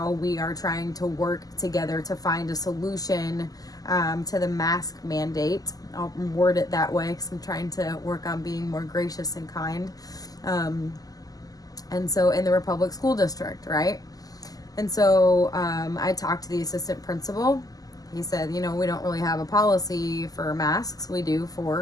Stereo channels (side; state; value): right; late; 0.17 ms